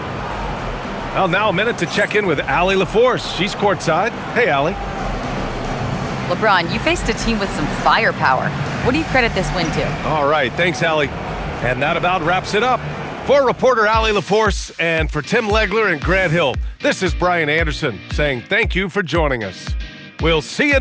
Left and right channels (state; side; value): identical; both; correlation 1.00